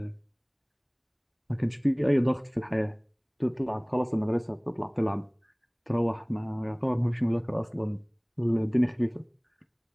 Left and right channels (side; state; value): both; identical; correlation 1.00